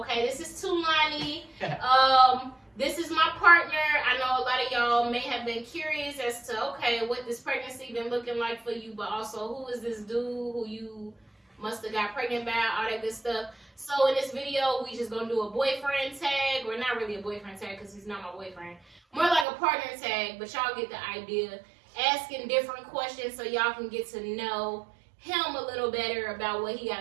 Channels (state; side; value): drops out; left; at 19.5 s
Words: this is Tulani. This is my partner. I know a lot of y'all may have been curious as to, okay, what this pregnancy been looking like for you, but also who is this dude who you must have got pregnant by, all that good stuff. So in this video, we just gonna do a boyfriend tag, or not really a boyfriend tag because he's not my boyfriend. More like a partner tag, but y'all get the idea. Asking different questions so y'all can get to know him a little better about what he